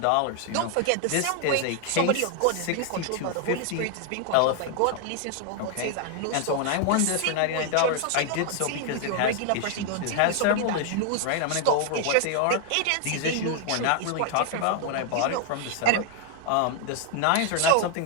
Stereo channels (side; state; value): both; different; correlation 0.00